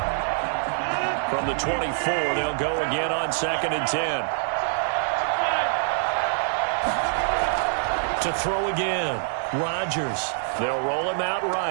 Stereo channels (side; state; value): left; silent; digital silence